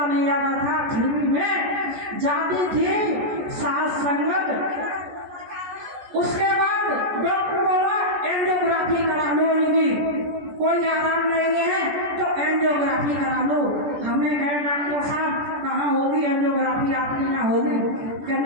नहीं आ रहा था, फिर भी मैं जाती थी। साथ संगत उसके बाद डॉक्टर बोला एंजियोग्राफी करा लो, इनकी कोई आराम नहीं है तो एंजियोग्राफी करा लो। हमने कहा डॉक्टर साहब कहाँ होगी एंजियोग्राफी, आपके यहाँ होगी क्या?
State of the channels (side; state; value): left; late; 14 ms